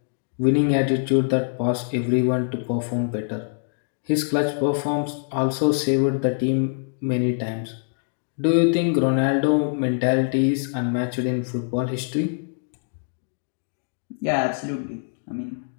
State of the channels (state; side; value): silent; right; digital silence